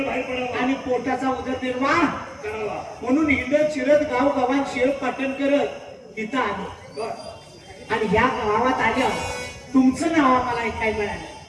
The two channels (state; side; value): identical; both; correlation 1.00